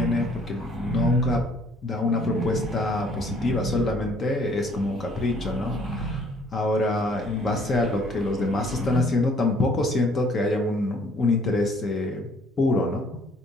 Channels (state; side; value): normal; both; correlation 0.60